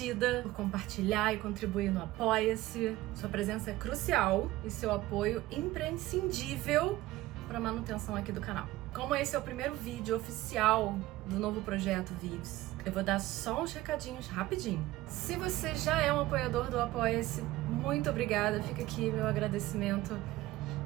por compartilhar e contribuir no Apoia-se. Sua presença é crucial e seu apoio imprescindível para a manutenção aqui do canal. Como esse é o primeiro vídeo oficial do novo projeto Vives, eu vou dar só uns recadinhos rapidinho. Se você já é um apoiador do Apoia-se, muito obrigada. Fica aqui meu agradecimento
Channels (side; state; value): left; quieter; 17.1 dB